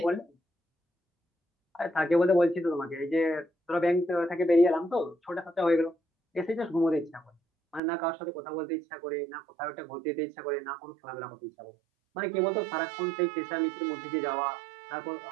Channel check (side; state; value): left; drops out; at 7.8 s